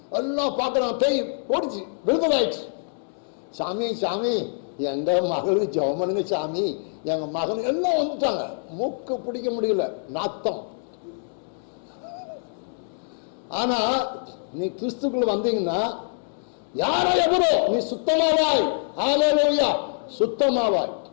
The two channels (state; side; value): silent; right; digital silence